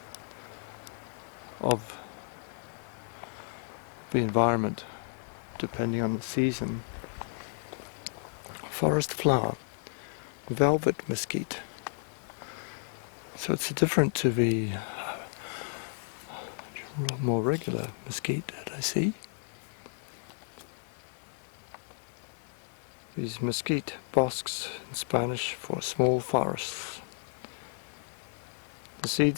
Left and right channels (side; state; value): right; silent; digital silence